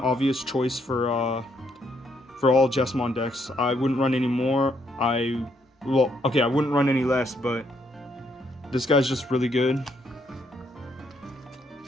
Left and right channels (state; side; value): normal; both; correlation 0.73